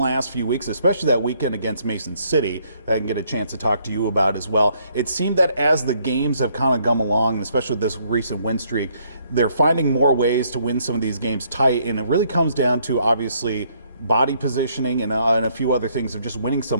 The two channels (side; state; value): both; inverted; correlation -0.68